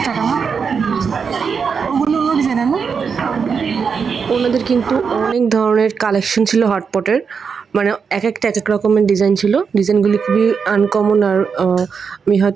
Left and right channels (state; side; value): quieter; left; 5.9 dB